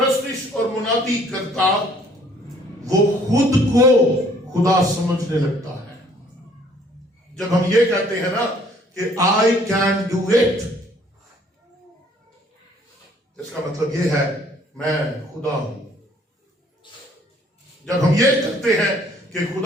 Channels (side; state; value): both; normal; correlation 0.60